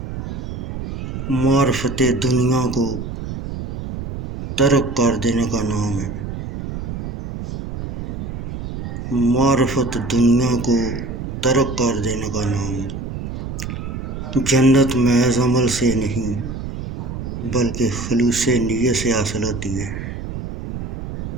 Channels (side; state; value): right; noise; rumble, 6 dB below the sound